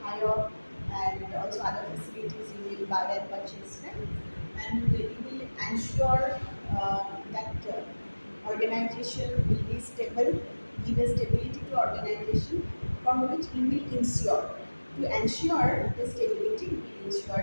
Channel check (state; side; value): inverted; both; correlation -1.00